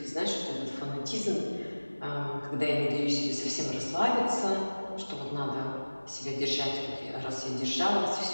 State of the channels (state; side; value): inverted; both; correlation -1.00